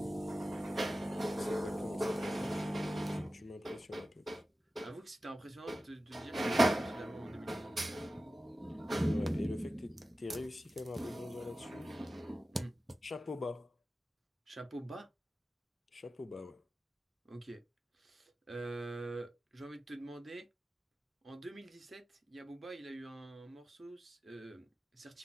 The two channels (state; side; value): normal; both; correlation 0.94